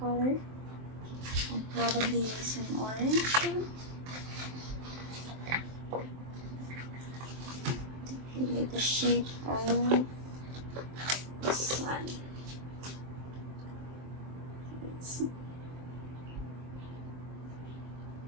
I'll probably use an orange one to create the shape of the sun. Let's see.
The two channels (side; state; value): left; late; 23 ms